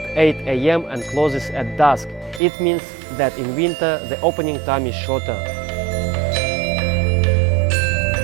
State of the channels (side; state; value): left; drops out; at 2.4 s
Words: 8 AM and closes at dusk. It means that in winter the opening time is shorter.